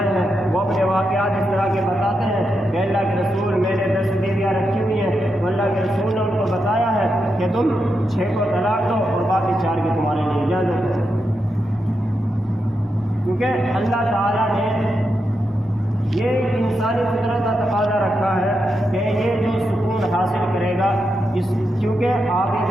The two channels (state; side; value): normal; both; correlation 0.85